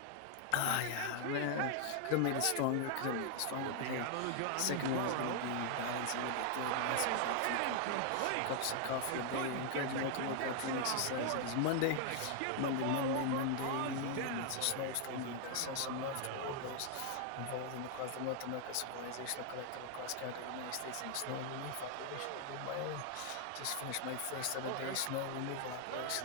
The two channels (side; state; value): both; different; correlation 0.00